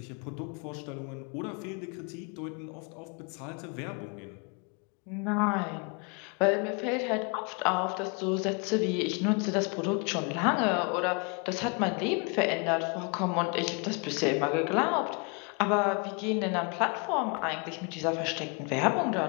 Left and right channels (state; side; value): quieter; right; 33.9 dB